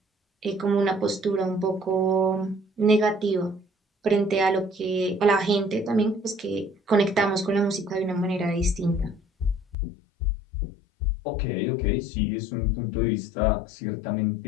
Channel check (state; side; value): drops out; right; at 9.8 s